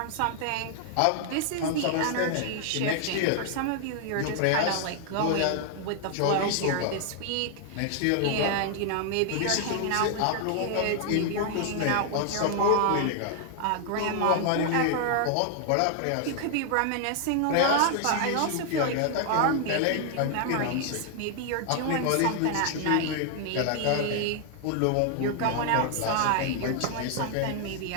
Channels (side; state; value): both; different; correlation 0.00